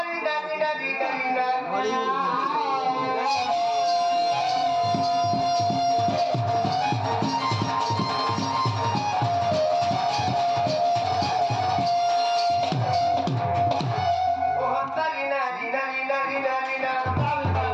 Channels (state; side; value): identical; both; correlation 1.00